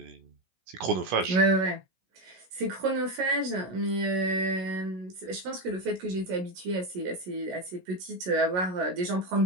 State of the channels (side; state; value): left; late; 17 ms